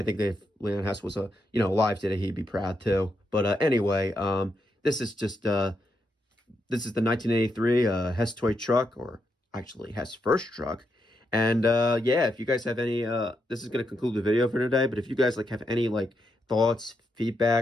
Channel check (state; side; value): normal; both; correlation 0.82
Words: think that if Leon Hess was alive today, he'd be proud too. But anyway, this is just this is the 1983 Hess toy truck, or actually Hess first truck. And yeah, if you guys have any, this is going to conclude the video for today. But if you guys have any thoughts,